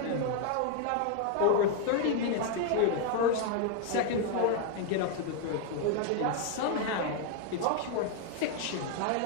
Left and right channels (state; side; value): different; both; correlation 0.00